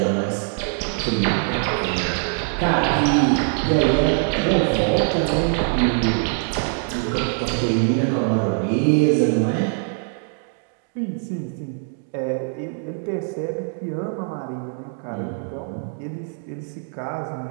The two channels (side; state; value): left; silent; 56 dB below the other